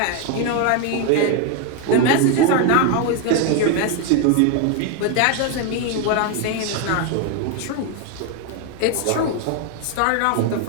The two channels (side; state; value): both; different; correlation 0.01